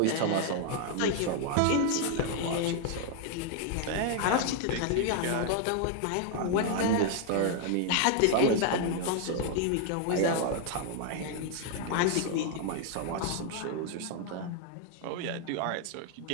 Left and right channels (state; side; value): different; both; correlation 0.00